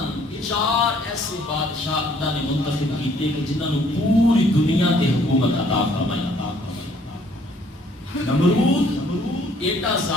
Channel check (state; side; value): normal; both; correlation 0.62